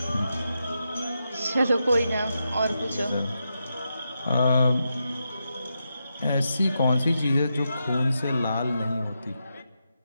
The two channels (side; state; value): both; inverted; correlation -0.86